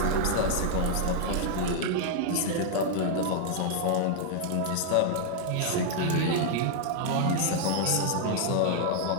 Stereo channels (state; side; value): different; both; correlation 0.00